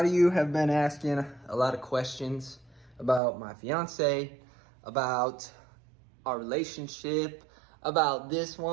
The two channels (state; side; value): drops out; left; at 3.2 s